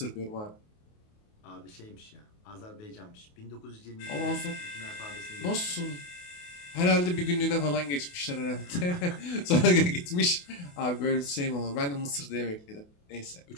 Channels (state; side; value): late; right; 28 ms